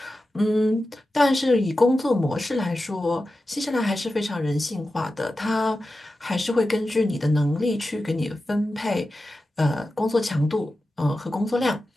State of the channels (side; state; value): both; normal; correlation 0.93